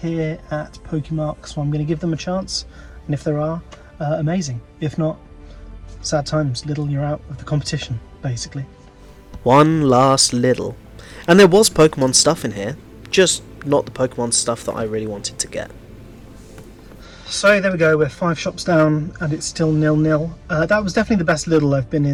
at PokeMark, so I'm going to give them a chance, and if there are, amazing. If not, sad times. Lidl, you're out of the competition, basically. One last Lidl. And there was Pokemon stuff in here, just not the Pokemon stuff that I really wanted to get. So there we go, we're 5 shops down and it's still 0-0. That was definitely the best Lidl I've been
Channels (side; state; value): both; identical; correlation 1.00